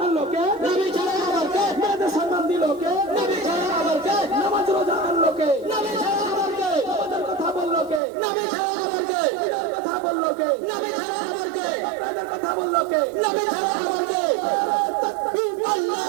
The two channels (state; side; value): drops out; left; at 8.0 s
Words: আনলো কে? নবী ছাড়া আবার কে? মেয়েদের সম্মান দিল কে? নবী ছাড়া আবার কে? নামাজ রোজা আনলো কে? নবী ছাড়া আবার কে? আমাদের কথা বললো কে? নবী ছাড়া আবার কে? ঈদের কথা বললো কে? নবী ছাড়া আবার কে? আপনাদের কথা বললো কে? নবী ছাড়া আবার কে? তাকবীর,